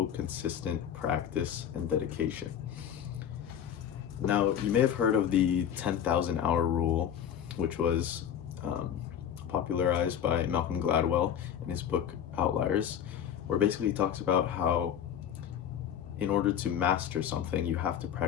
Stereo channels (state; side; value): quieter; right; 9.2 dB